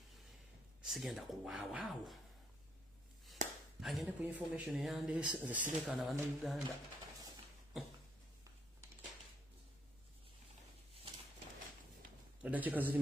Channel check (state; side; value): normal; both; correlation 0.71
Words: sigenda kuwaawo agende ku information yande zisireka na bana Uganda. Dakika ziri